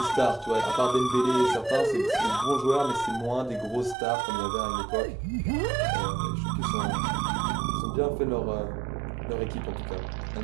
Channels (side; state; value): left; drops out; at 4.0 s